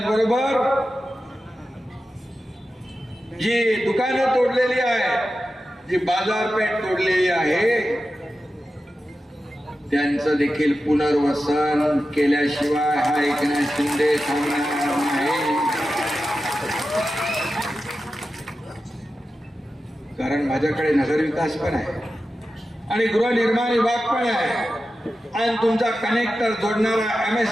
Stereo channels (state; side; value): normal; both; correlation 0.92